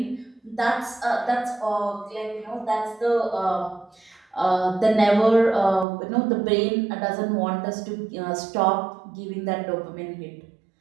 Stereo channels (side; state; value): left; drops out; at 5.9 s